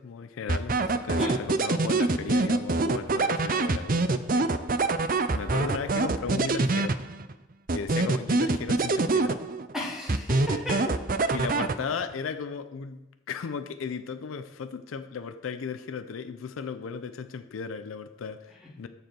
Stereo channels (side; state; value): both; normal; correlation 0.41